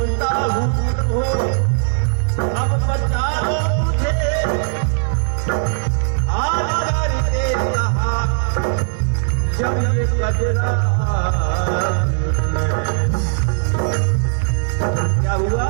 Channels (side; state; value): left; silent; digital silence